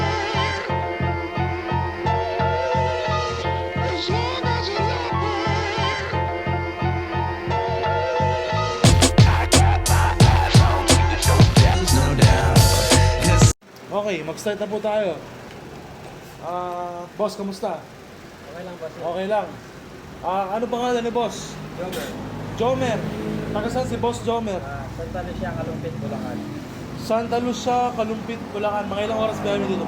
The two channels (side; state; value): both; identical; correlation 1.00